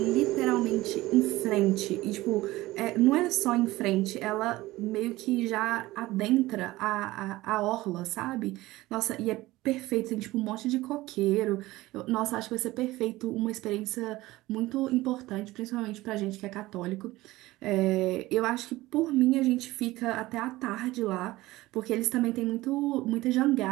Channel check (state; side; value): quieter; left; 18.3 dB